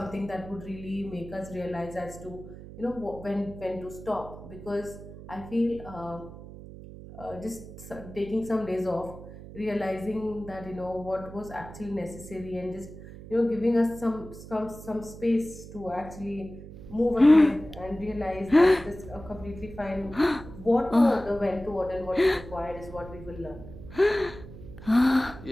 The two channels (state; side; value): noise; right; hum, 14 dB below the sound